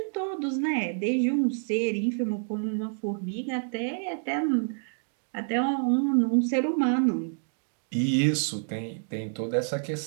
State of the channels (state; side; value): silent; left; digital silence